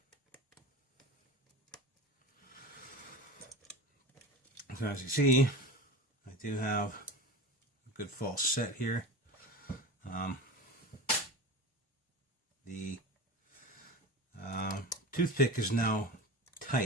So as you see, I do have a good false set here. The toothpick is now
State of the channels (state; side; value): normal; both; correlation 0.30